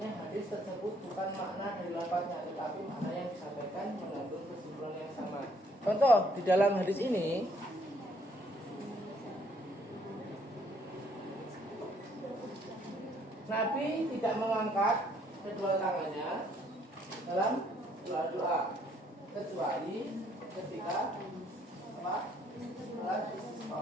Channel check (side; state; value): both; normal; correlation 0.65